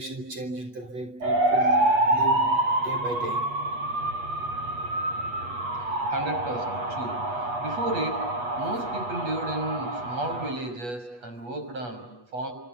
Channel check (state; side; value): late; left; 8.2 ms